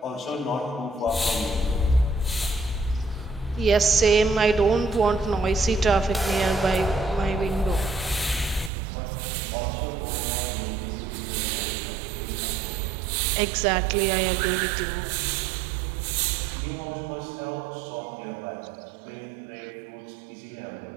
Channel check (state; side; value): drops out; left; at 8.7 s